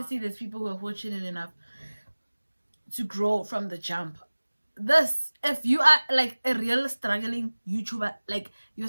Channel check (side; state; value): both; inverted; correlation -1.00